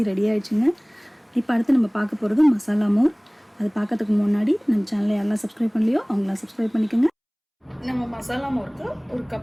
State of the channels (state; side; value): identical; both; correlation 1.00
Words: ரெடி ஆகிடுச்சுங்க. இப்போ அடுத்து நம்ம பார்க்க போகிறது மசாலா மோர். அது பார்க்கறதுக்கு முன்னாடி நம்ம சேனலை யாரெல்லாம் சப்ஸ்கிரைப் பண்ணலையோ அவங்களாம் சப்ஸ்கிரைப் பண்ணிக்கோங்க. நம்ம மசாலா மோருக்கு 1